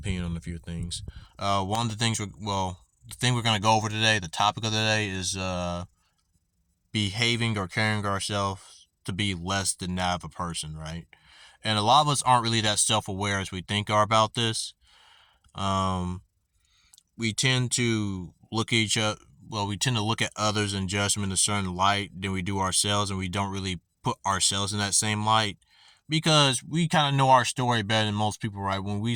on a few things. One of the things, the thing we're going to go over today, the topic of the day is behaving or carrying ourselves to be less than that of a person, right? And a lot of us aren't really that self aware as we think are about this. Um, we tend to look at each other. Well, we tend to look at others and judge them in a certain light than we do ourselves, and we don't really put ourselves in that same light because we kind of know our story better than most people, right? When we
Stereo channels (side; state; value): both; identical; correlation 1.00